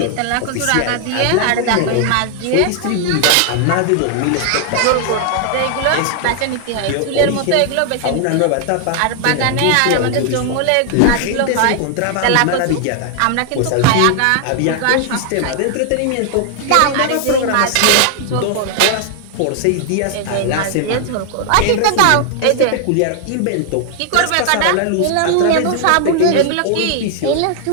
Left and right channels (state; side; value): different; both; correlation 0.00